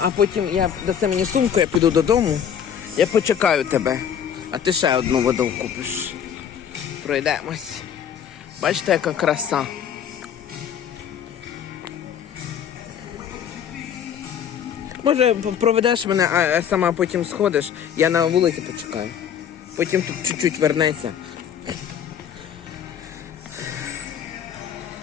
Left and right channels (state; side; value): quieter; right; 8.6 dB